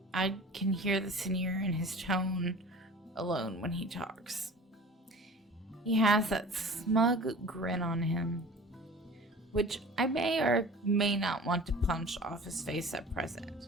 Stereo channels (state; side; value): normal; both; correlation 0.40